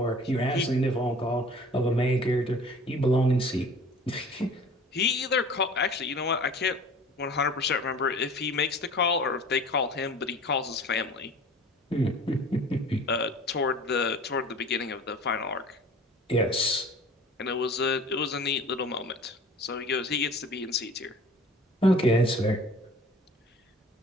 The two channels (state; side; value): normal; both; correlation 0.45